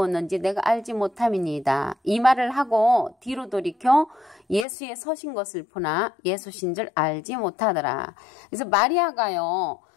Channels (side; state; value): right; drops out; at 4.7 s